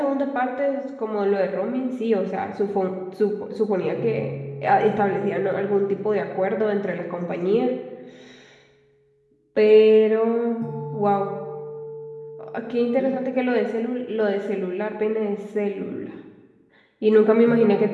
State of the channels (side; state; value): both; identical; correlation 1.00